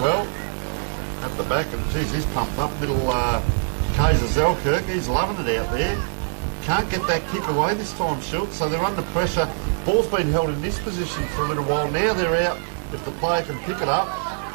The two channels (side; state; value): left; silent; 55 dB below the other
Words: At the back, and geez, he's pumped up. Little Kaiser Zelkirk, he's loving it out there. Can't get that kick away this time, Schultz, so they're under pressure. Ball's been held in this position for a little while. Now they're out. If the player can pick it up.